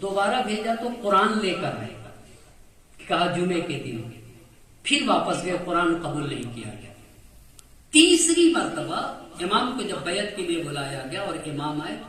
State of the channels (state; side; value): identical; both; correlation 1.00